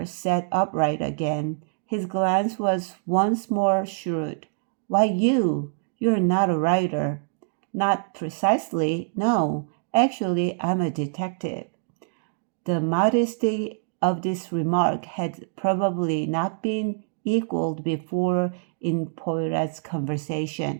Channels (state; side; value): silent; left; digital silence